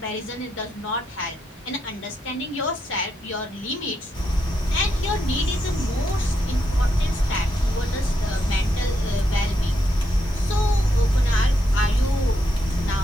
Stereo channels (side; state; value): both; normal; correlation 0.81